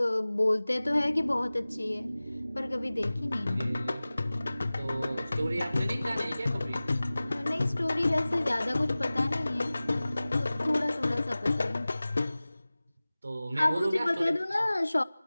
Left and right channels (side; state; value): both; inverted; correlation -0.98